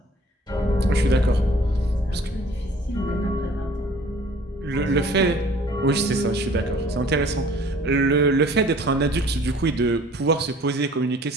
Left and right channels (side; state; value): both; normal; correlation 0.53